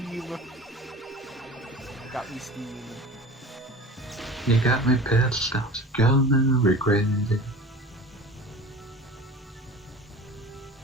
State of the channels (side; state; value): both; normal; correlation 0.37